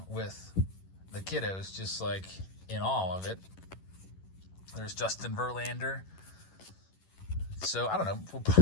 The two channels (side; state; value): right; late; 11 ms